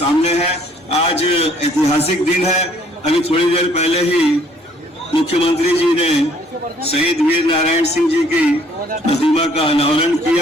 है। आज ऐतिहासिक दिन है। अभी थोड़ी देर पहले ही मुख्यमंत्री जी ने शहीद वीर नारायण सिंह जी की प्रतिमा का अनावरण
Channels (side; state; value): both; normal; correlation 0.61